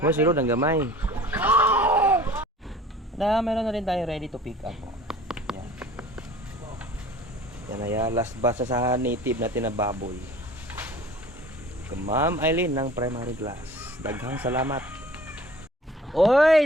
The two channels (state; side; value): normal; both; correlation 0.46